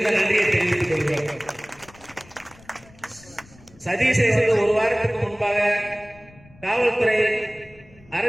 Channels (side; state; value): left; noise; rumble, 25 dB below the sound